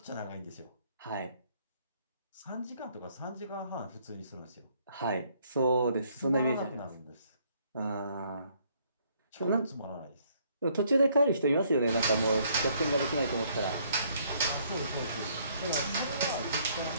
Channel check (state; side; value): inverted; both; correlation -0.66